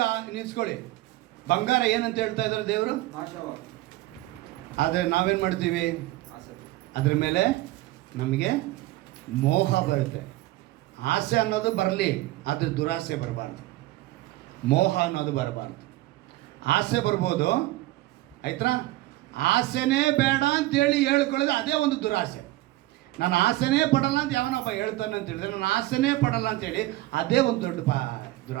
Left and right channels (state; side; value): quieter; left; 17.7 dB